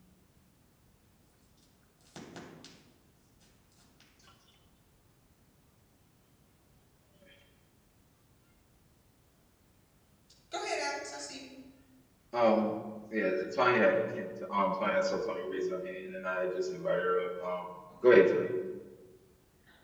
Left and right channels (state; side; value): identical; both; correlation 1.00